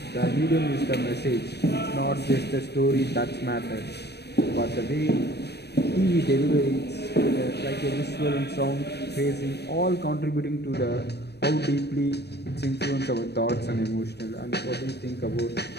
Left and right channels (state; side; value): late; right; 0.48 ms